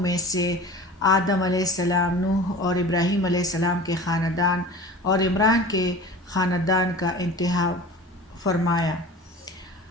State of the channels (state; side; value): normal; both; correlation 0.38